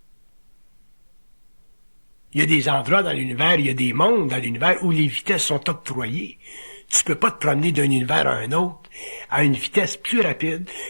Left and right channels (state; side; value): inverted; both; correlation -1.00